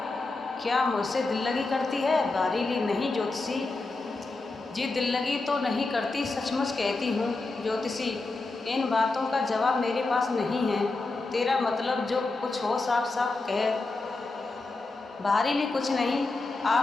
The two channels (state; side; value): quieter; right; 3.4 dB